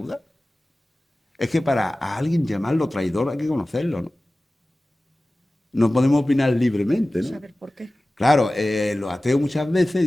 Es que para a alguien llamarlo traidor hay que conocerlo, ¿no? No podemos opinar libremente, ¿no? Saber por qué. Claro, los ateos muchas veces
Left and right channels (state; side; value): normal; both; correlation 0.97